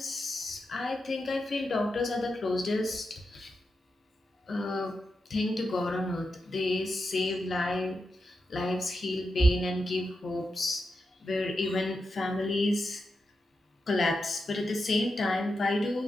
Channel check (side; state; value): both; normal; correlation 0.88